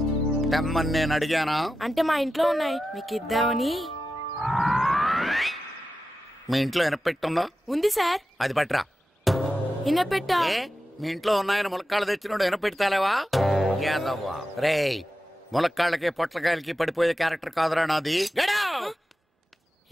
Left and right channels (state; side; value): normal; both; correlation 0.92